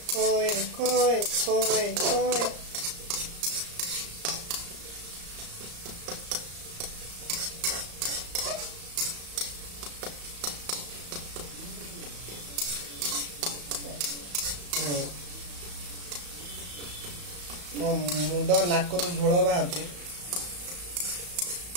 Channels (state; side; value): late; left; 34 ms